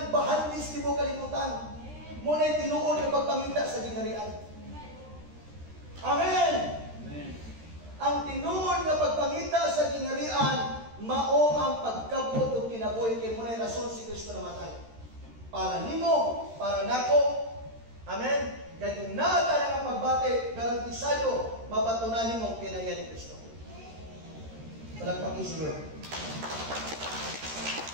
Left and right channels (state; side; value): late; left; 13 ms